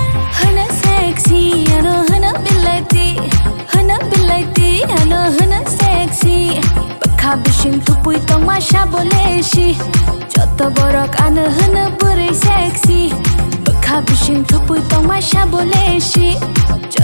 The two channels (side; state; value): both; inverted; correlation -1.00